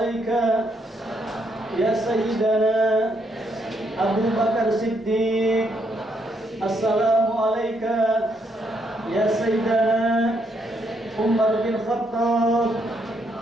ya Sayyidana Abu Bakar Siddiq. Assalamualaikum ya Sayyidana Umar bin Khattab.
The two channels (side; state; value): both; normal; correlation 0.75